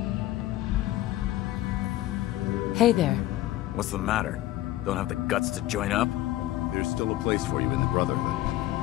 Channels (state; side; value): quieter; right; 15.2 dB